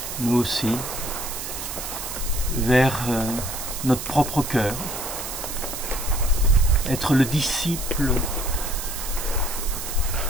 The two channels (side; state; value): right; noise; hiss, 6 dB below the sound